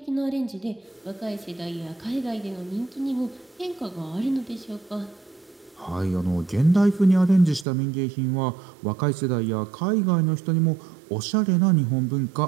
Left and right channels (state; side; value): drops out; left; at 7.7 s